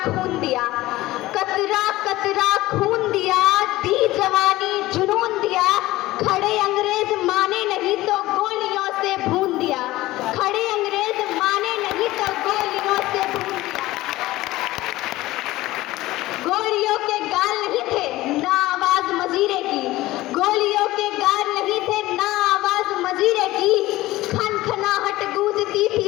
खून दिया, कतरा कतरा खून दिया, दी जवानी जुनून दिया, खड़े अंग्रेज माने नहीं तो गोलियों से भून दिया, खड़े अंग्रेज माने नहीं तो गोलियों से भून दिया। गोलियों के गाल नहीं थे ना आवाज मजीरे की, गोलियों के गाल नहीं थे ना आवाज मजीरे की, खनखनाहट गूंजती थी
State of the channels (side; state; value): right; quieter; 17.5 dB